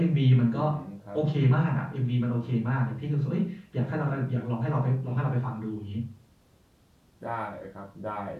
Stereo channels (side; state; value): both; identical; correlation 1.00